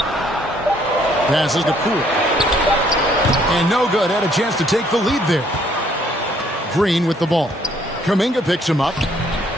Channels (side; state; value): both; normal; correlation 0.65